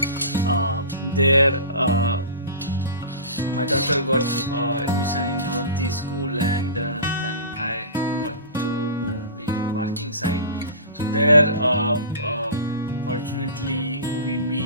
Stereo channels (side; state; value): both; inverted; correlation -0.33